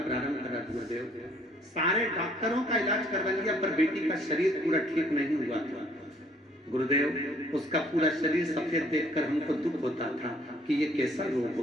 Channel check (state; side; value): normal; both; correlation 0.61